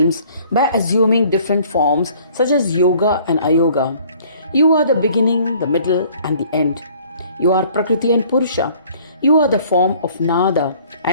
by assuming different forms such as yoga and ayoga. You are the beginning, the middle and the end. You are Prakriti and Purusha. You are the form of Nada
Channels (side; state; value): both; inverted; correlation -0.56